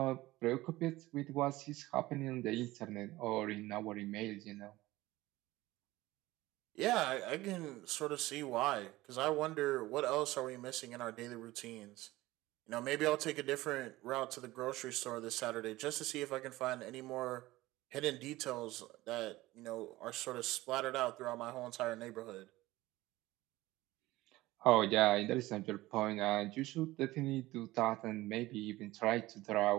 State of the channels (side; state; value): left; quieter; 18.3 dB